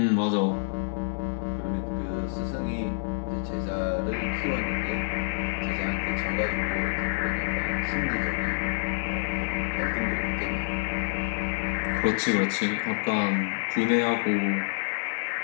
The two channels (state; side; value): silent; right; 60 dB below the other